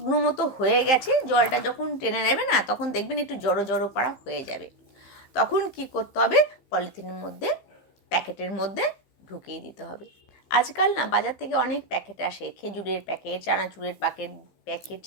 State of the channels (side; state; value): right; late; 15 ms